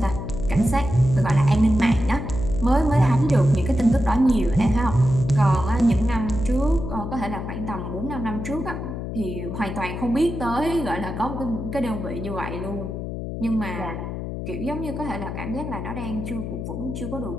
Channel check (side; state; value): left; noise; hum, 6 dB below the sound